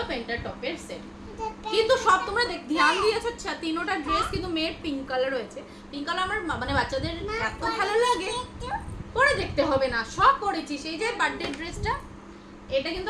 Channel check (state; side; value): identical; both; correlation 1.00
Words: প্যান্টটা টপের সেট। কিন্তু সব তোমরা ধ্যান দিয়েছো, 3টা ড্রেস কিন্তু মেয়ের পিঙ্ক কালার রয়েছে। পিঙ্ক কালার আমার মানে বাচ্চাদের এত ভালো লাগে, পরে দেখতে হবে না, সব পরেছি। সেই যে বার্থডে ড্রেসটা, এটা কিন্তু